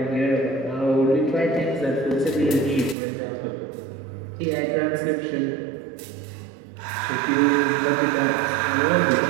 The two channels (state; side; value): drops out; left; at 3.0 s